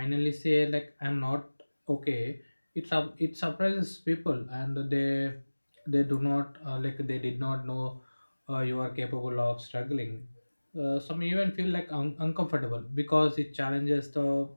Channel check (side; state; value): both; inverted; correlation -1.00